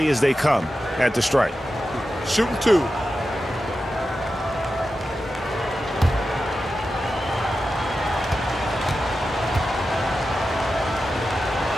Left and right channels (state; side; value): normal; both; correlation 0.91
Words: as they come at the stripe. Shooting 2.